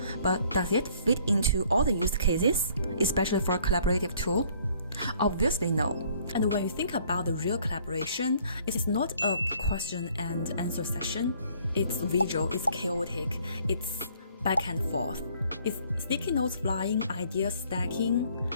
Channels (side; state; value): both; inverted; correlation -0.60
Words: But does it fit into all the use cases, especially for a collaborative tool? Obviously no. And when you think about the real collaboration, it is not a question and answer session. It's visual, it's chaotic, it's back and forth. It's sticky notes flying, ideas stacking,